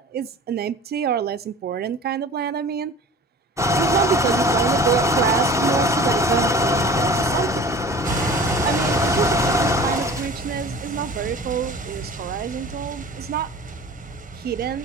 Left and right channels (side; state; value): both; normal; correlation 0.41